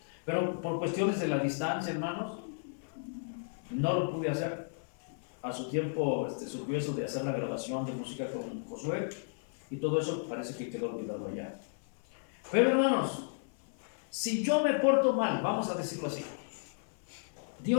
pero por cuestiones de la distancia, hermanos, no lo pude hacer. A su tiempo surgió eso de hacer la grabación de música con Josué, y todo eso parece que quedó olvidado allá. Pero hermanos, si yo me porto mal, vamos a decirlo así,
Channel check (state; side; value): silent; right; 55 dB below the other